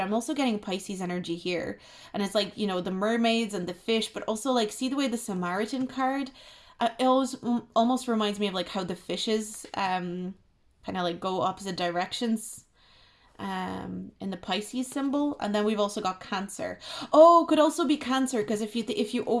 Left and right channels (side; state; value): both; identical; correlation 1.00